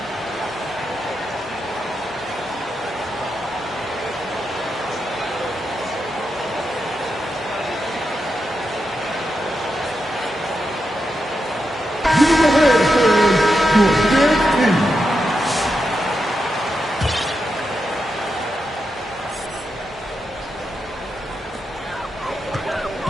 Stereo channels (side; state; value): both; normal; correlation 0.86